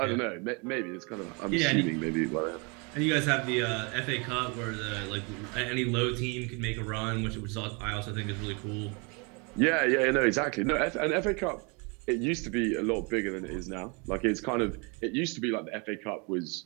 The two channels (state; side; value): quieter; left; 31.8 dB